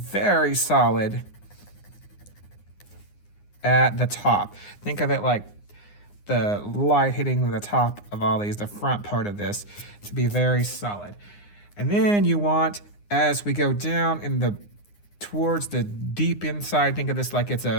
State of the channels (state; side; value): late; right; 9.7 ms